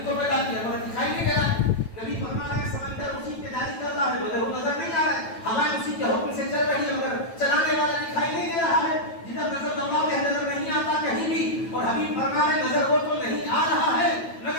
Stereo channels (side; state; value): right; late; 9.0 ms